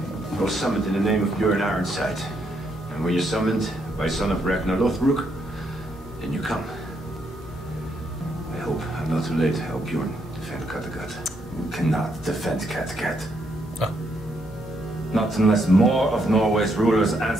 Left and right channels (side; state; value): both; normal; correlation 0.76